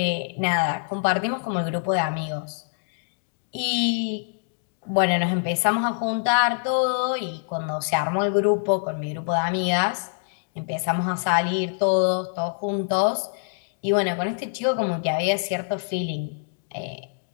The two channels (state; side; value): silent; right; digital silence